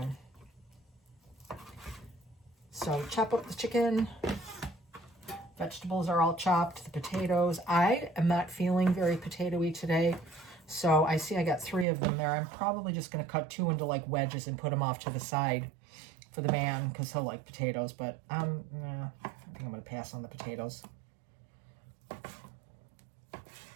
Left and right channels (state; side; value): drops out; left; at 11.9 s